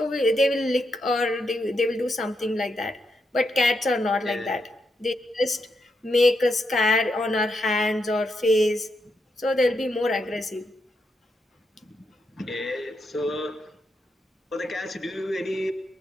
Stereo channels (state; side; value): normal; both; correlation 0.82